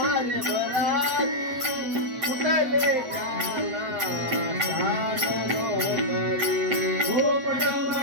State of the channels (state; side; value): late; left; 7.7 ms